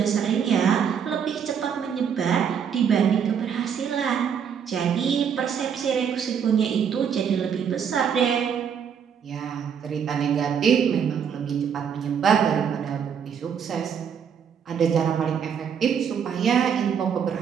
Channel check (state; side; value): quieter; left; 7.6 dB